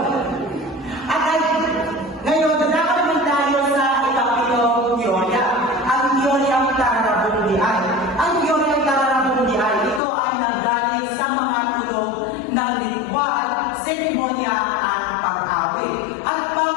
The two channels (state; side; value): drops out; right; at 10.0 s